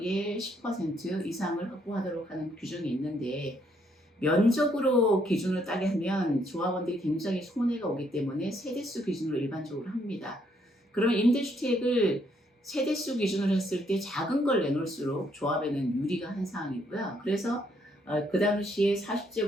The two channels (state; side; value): normal; both; correlation 0.71